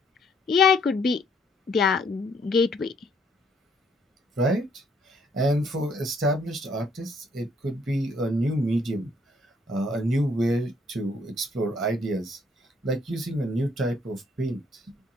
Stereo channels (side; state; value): both; normal; correlation 0.67